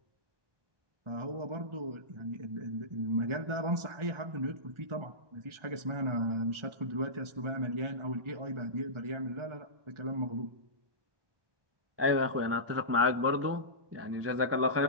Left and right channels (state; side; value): late; left; 1.4 ms